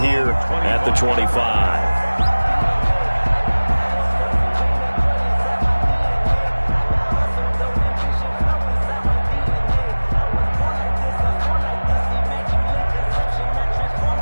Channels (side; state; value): both; inverted; correlation -1.00